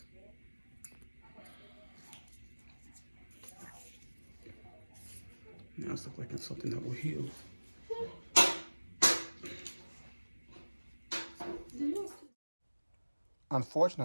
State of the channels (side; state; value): both; inverted; correlation -1.00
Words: Now it's looking like it's something that will heal.